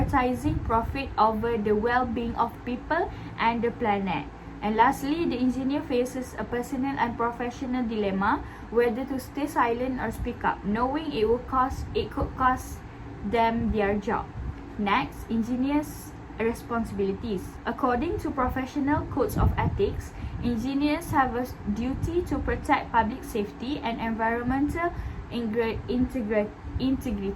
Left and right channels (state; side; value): identical; both; correlation 1.00